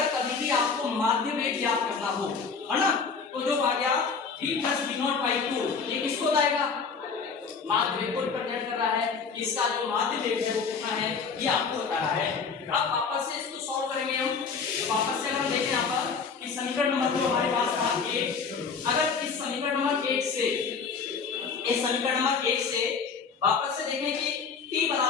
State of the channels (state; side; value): quieter; right; 5.4 dB